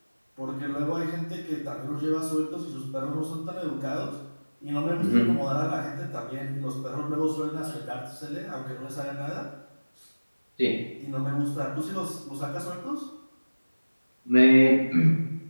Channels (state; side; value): inverted; both; correlation -1.00